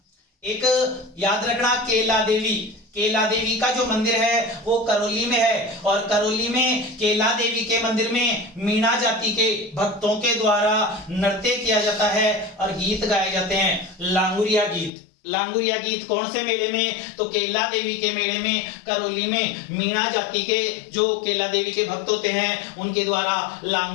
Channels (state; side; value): drops out; right; at 14.9 s